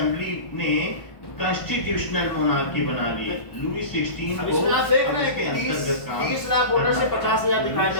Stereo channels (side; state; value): right; late; 1.4 ms